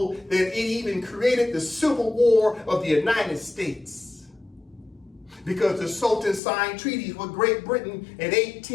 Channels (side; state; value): right; drops out; at 6.4 s